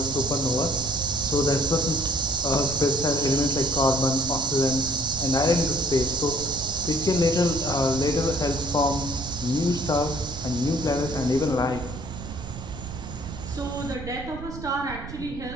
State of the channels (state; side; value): noise; right; rumble, 11 dB below the sound